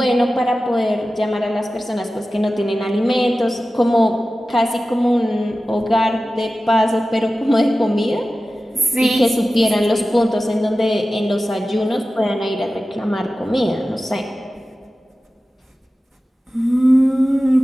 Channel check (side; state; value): both; normal; correlation 0.95